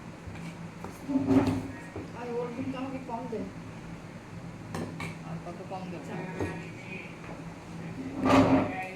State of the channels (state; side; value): identical; both; correlation 1.00